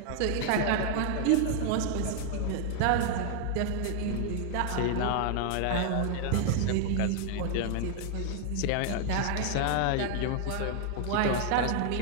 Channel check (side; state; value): both; different; correlation 0.00